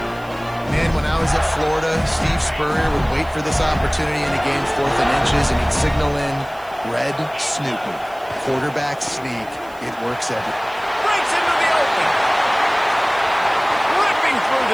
Man, when I was at Florida, Steve Spurrier would wait for this opportunity in a game 4th and inches, and he'd signal in red Snoopy. Quarterback sneak. It works every. Breaks into the open. Ripping through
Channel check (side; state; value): right; noise; hiss, 26 dB below the sound